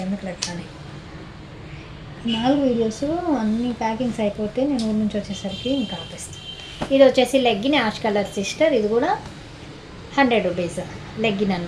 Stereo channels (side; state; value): both; identical; correlation 1.00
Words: ఎందుకు లెక్కని. 4 వీడియోస్ అన్ని ప్యాకింగ్స్ అయిపోతే నేను ఊరి నుంచి వచ్చేసరికి ఇంకా ఆపేస్తాను. ఇది వచ్చేసి లెగ్గిన్ యాష్ కలర్ సిస్టర్. ఇది కూడా 100 రూపీస్ లెగ్గిన్